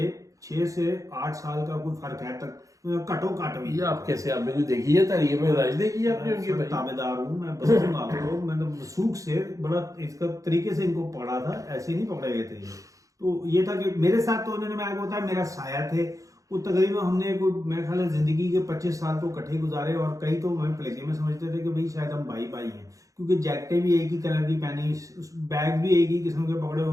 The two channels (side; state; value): left; late; 0.16 ms